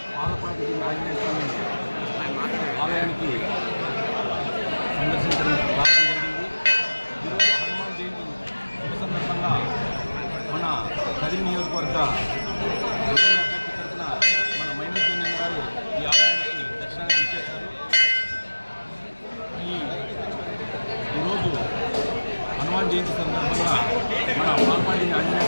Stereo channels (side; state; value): both; inverted; correlation -1.00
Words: ఆలయానికి సందర్శించడం రావడం జరిగింది. ఈరోజు హనుమాన్ జయంతి శుభ సందర్భంగా మన కదిరి నియోజకవర్గ తరఫున మన మైనూర్ గారు ఈ ఆలయానికి దర్శనానికి ఇచ్చేశారు. ఈరోజు హనుమాన్ జయంతి సందర్భంగా మన పాల్పాడి ఆంజనేయ